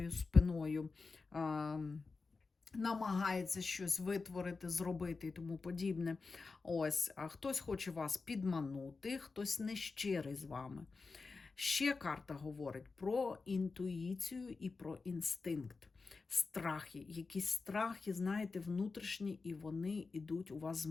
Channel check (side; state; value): right; quieter; 4.2 dB